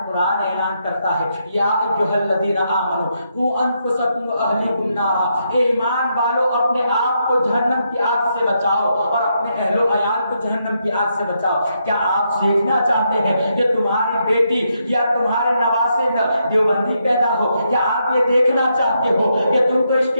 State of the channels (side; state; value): both; inverted; correlation -0.79